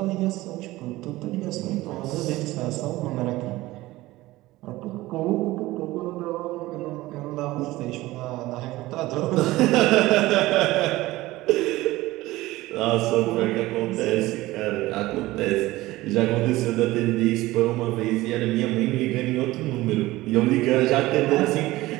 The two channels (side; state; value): left; quieter; 18.2 dB